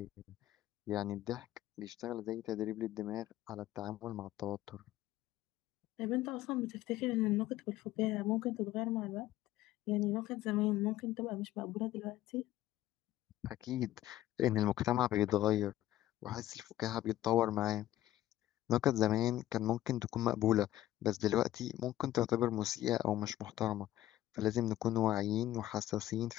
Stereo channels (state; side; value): quieter; right; 14.3 dB